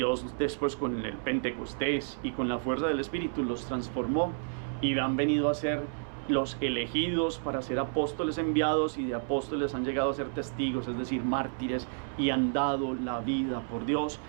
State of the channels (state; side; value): silent; left; 57 dB below the other